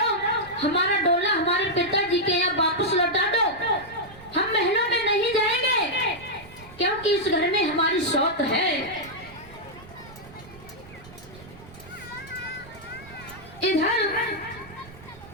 हमारा डोला हमारे पिताजी के यहाँ वापस लौटा दो। हम महलों में नहीं जाएंगे, क्योंकि इस घर में हमारी शौक है। इधर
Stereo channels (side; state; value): right; noise; rumble, 20 dB below the sound